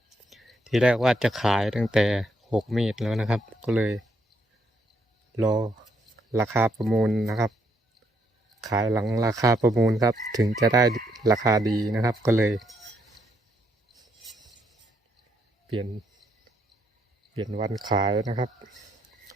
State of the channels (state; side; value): normal; both; correlation 0.74